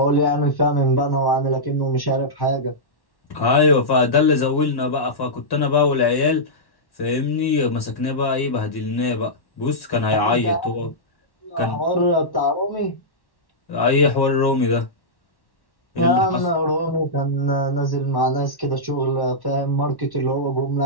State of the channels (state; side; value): late; right; 1.1 ms